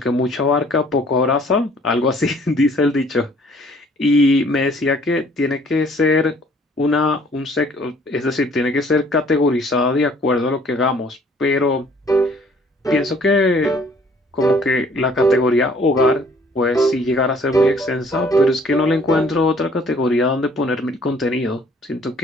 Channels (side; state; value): both; normal; correlation 0.58